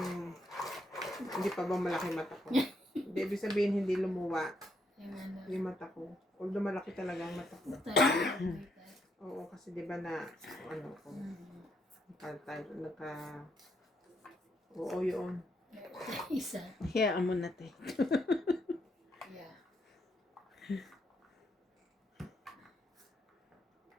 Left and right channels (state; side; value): normal; both; correlation 0.76